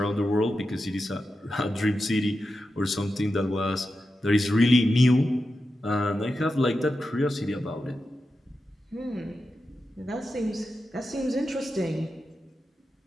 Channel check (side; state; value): both; normal; correlation 0.90